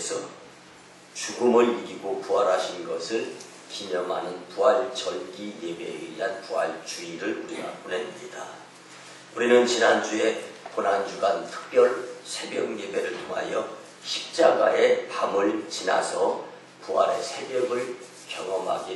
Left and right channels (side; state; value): both; identical; correlation 1.00